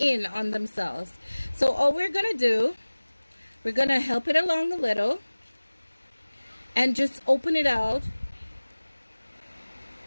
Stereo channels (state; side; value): inverted; both; correlation -1.00